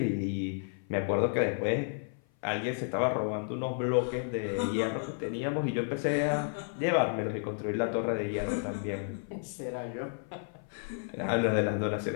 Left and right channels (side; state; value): right; silent; 55 dB below the other